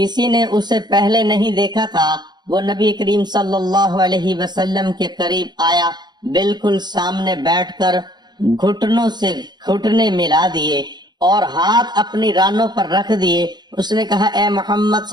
نے اسے پہلے نہیں دیکھا تھا۔ وہ نبی کریم صلی اللہ علیہ وسلم کے قریب آیا، بالکل سامنے بیٹھ کر گھٹنوں سے گھٹنے ملا دیے اور ہاتھ اپنی رانوں پر رکھ دیے۔ اس نے کہا، اے محمد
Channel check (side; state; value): left; late; 0.21 ms